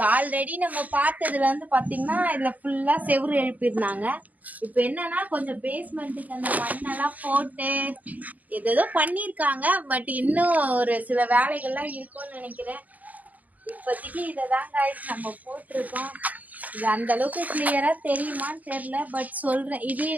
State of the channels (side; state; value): left; late; 0.077 ms